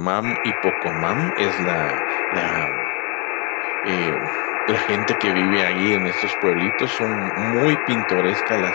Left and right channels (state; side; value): quieter; right; 31.4 dB